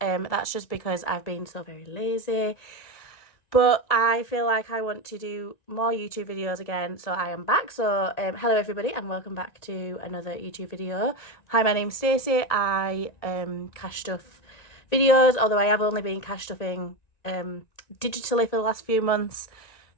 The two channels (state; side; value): late; right; 1.9 ms